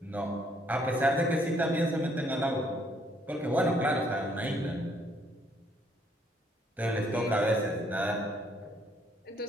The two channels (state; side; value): normal; both; correlation 0.67